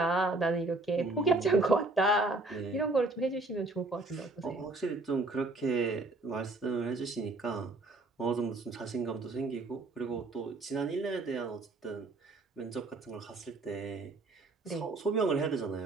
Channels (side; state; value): left; quieter; 3.1 dB